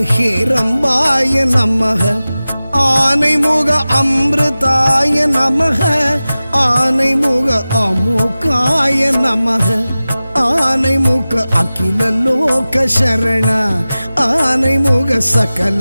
ஹேரம்பாய நமக ஆனை முக அமிர்தாய நமக ஆனை முக அமுகாய நமக ஆனை முக அகில லோக சரண ஆனை முக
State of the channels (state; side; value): inverted; both; correlation -0.96